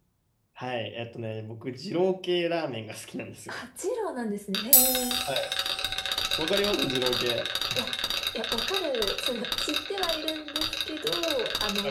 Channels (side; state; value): both; identical; correlation 1.00